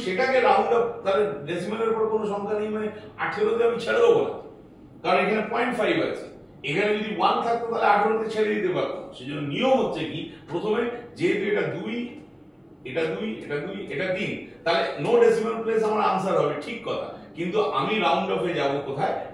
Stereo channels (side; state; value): both; identical; correlation 1.00